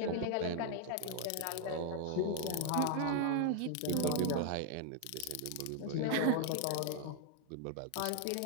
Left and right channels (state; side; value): different; both; correlation 0.00